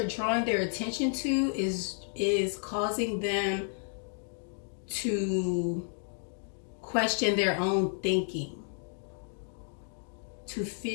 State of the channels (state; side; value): silent; right; 57 dB below the other